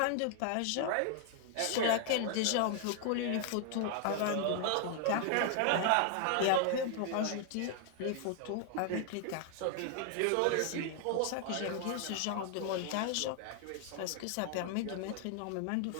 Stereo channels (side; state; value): both; different; correlation 0.00